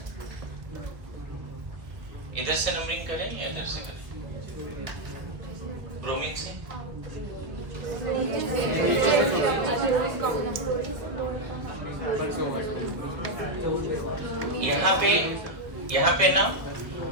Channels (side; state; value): left; late; 1.3 ms